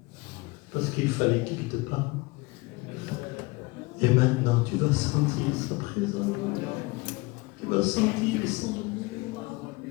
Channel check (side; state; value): right; quieter; 24.2 dB